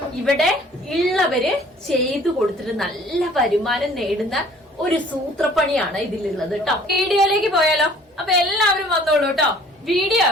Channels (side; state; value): both; normal; correlation 0.53